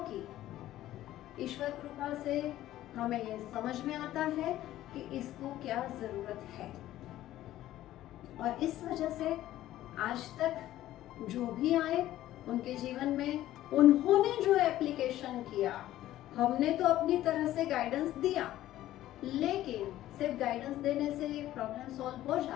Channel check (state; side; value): quieter; right; 14.1 dB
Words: ईश्वर कृपा से हमें ये समझ में आता है कि इसको क्या जरूरत है। और इस वजह से आज तक जो भी आए उनके जीवन में उन्होंने जो एप्लीकेशन किया, हमने तो अपनी तरह से गाइडेंस दिया, लेकिन सिर्फ गाइडेंस देने से प्रॉब्लम सॉल्व हो